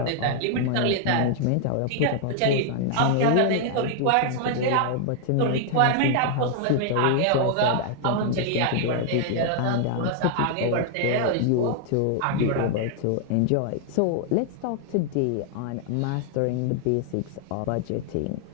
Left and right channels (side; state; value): both; different; correlation -0.01